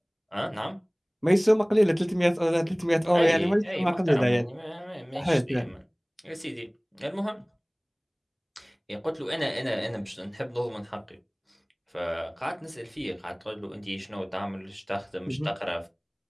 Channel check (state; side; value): identical; both; correlation 1.00